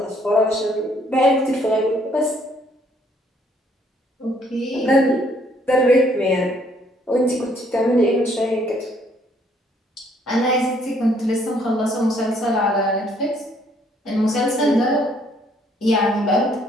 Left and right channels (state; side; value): normal; both; correlation 0.65